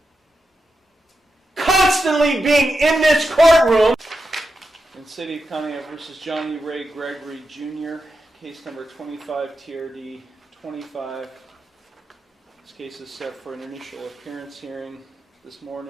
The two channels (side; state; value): both; normal; correlation 0.88